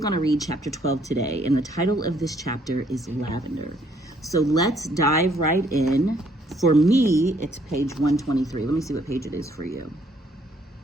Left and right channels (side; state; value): both; normal; correlation 0.66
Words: to read chapter 12 today, and the title of this chapter is Lavender. So let's dive right in. For me, it's page 123. Let me see what page it is for you.